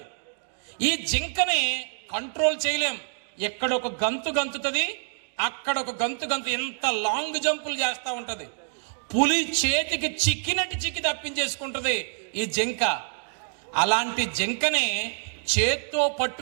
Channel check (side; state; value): left; silent; digital silence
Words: ఈ జింకని కంట్రోల్ చేయలేం. ఎక్కడొక గంతు గంతుతుంది, అక్కడ ఒక గంతు ఎంత లాంగ్ జంపులు చేస్తూ ఉంటది. పులి చేతికి చిక్కి తప్పించేసుకుంటది ఈ జింక. అలాంటి జింకని చేత్తో